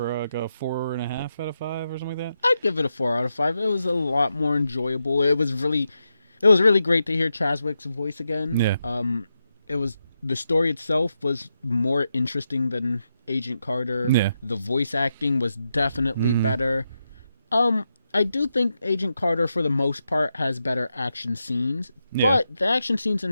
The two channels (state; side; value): inverted; both; correlation -0.86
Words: like a 4.5 out of 5 or something like that. I'd give it a 4 out of 5. It was a lot more enjoyable. It was really great to hear Chadwick's voice again. Yeah. It was the story itself was more interesting than Agent Carter. Yeah. The voice acting was definitely better. I do think Agent Carter, for the most part, has better action scenes, but the action scenes in